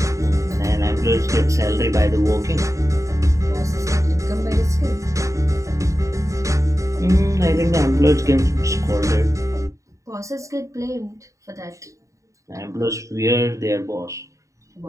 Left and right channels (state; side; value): late; left; 0.15 ms